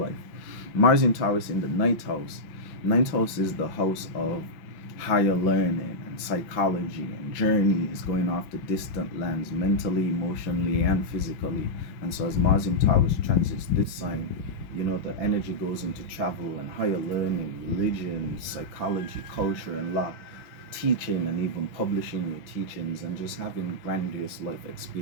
Mars in Taurus in the ninth house. Ninth house is the house of higher learning and psychology and journeys, going off to distant lands mentally, emotionally, and physically. And so as Mars in Taurus transits this sign, you know, the energy goes into travel and higher learning, religion, psychology, culture, and law, teaching and even publishing your teachings, and just having grandiose life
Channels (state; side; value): late; right; 5.9 ms